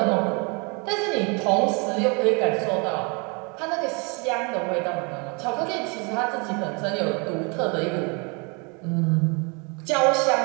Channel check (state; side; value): quieter; left; 32.1 dB